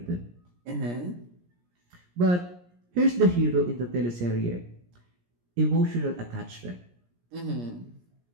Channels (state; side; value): late; left; 17 ms